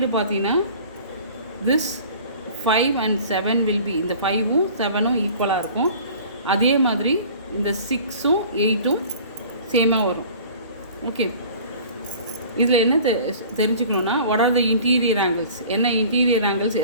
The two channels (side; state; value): both; inverted; correlation -0.45